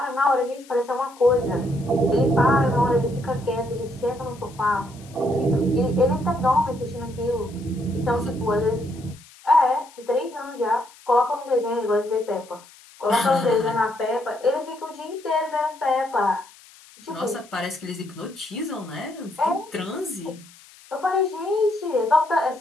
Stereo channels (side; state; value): left; noise; hiss, 23 dB below the sound